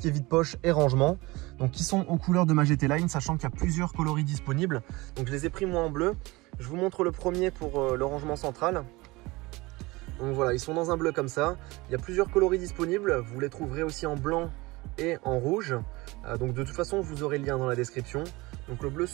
est vide-poche et rangement, donc qui sont aux couleurs de ma GT Line, sachant qu'il y a plusieurs coloris disponibles. Donc je les ai pris moi en bleu. Je vous montre le premier pour le rangement central. Donc voilà, ils sont dans un bleu comme ça. Il y a plusieurs coloris disponibles. Vous les trouverez aussi en blanc et en rouge. Donc de toute façon, vous aurez le lien dans la description. Donc le bleu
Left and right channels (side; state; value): left; quieter; 22.3 dB